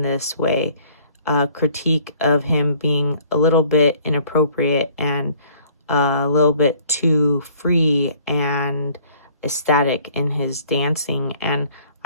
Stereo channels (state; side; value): inverted; both; correlation -0.56